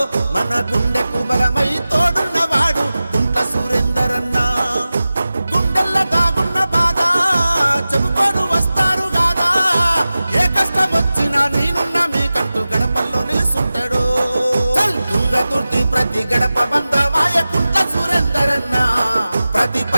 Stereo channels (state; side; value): inverted; both; correlation -0.95